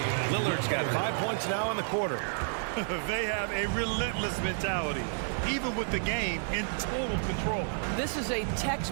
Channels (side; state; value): left; silent; 57 dB below the other